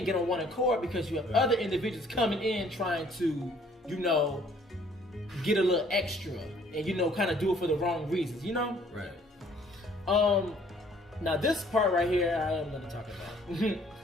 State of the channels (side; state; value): both; normal; correlation 0.59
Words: get on one accord because you have other individuals coming in trying to, you know, get a little extra and, you know, kind of do it for the wrong reasons, you know? Right. Now this part right here, I am going to talk about.